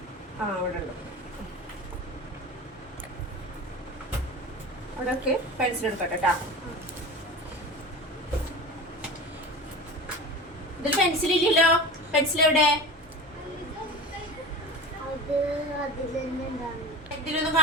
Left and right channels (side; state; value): both; normal; correlation 0.32